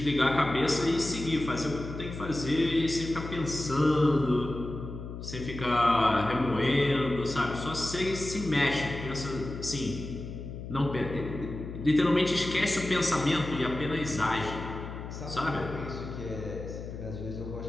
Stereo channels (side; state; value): left; noise; hum, 9 dB below the sound